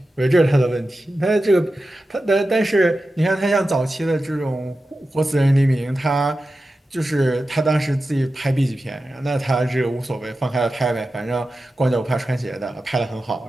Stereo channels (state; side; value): normal; both; correlation 0.93